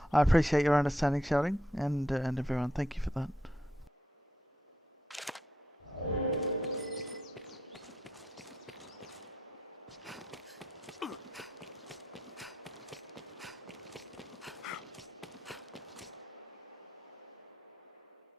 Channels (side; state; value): both; normal; correlation 0.81